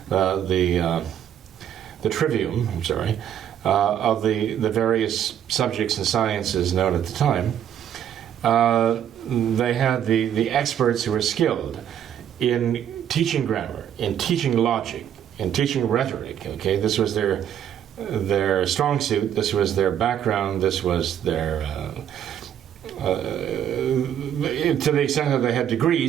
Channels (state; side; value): quieter; left; 9.8 dB